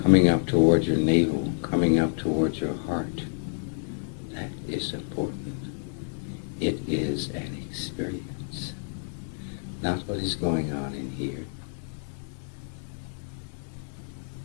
coming up toward your navel, coming up toward your heart, that is important. It is an experience. Not what is going on in here.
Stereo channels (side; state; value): right; silent; digital silence